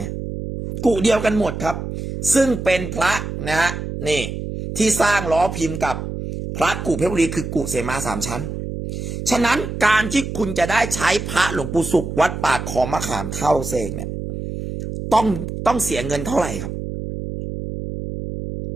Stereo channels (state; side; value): noise; right; hum, 6 dB below the sound